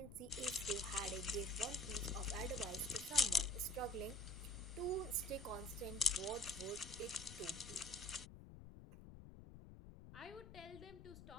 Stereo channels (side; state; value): left; noise; rumble, 14 dB below the sound